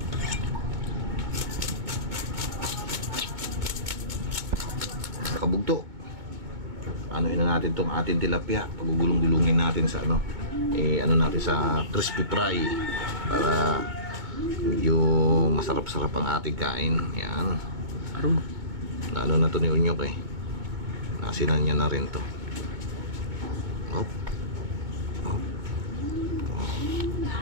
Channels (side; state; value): left; late; 2.2 ms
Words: Kabugto, ano ina natin tong ating tilapia, pagugulong-gulungin natin sa ano, ano natin sa crispy fry para medyo masarap-sarap ang ating kain. Yan. Aron. Ano na to ni Unyok eh. Nasinan niya na rin to. Hop. Hop. Hop.